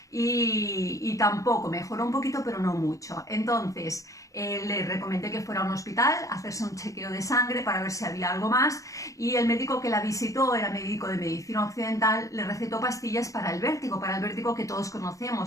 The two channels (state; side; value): late; right; 0.16 ms